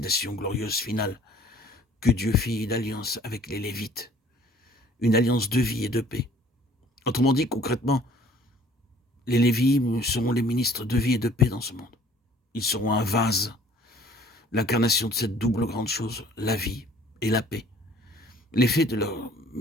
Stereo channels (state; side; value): normal; both; correlation 0.54